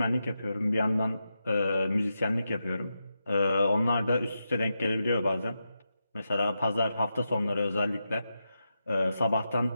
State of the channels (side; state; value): both; inverted; correlation -0.88